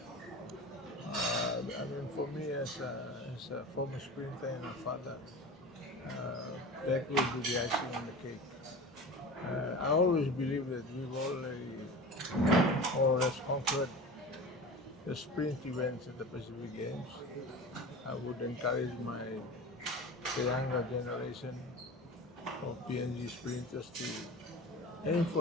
For me as a former sprinter and a father, that will be the icing on the cake. I always believe that we've already more or less conquered the sprint events at the Pacific Games. I would encourage the younger generation of PNG sprinters to aim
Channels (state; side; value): normal; both; correlation 0.34